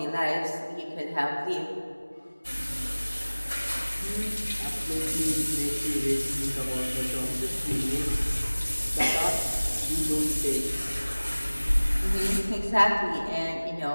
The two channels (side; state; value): both; inverted; correlation -1.00